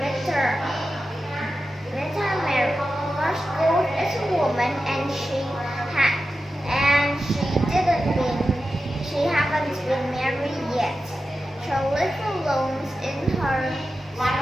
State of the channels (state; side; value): normal; both; correlation 0.92